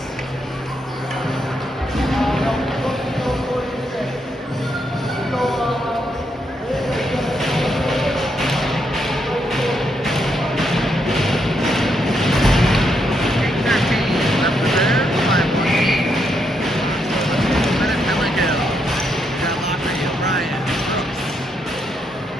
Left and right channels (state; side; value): normal; both; correlation 0.78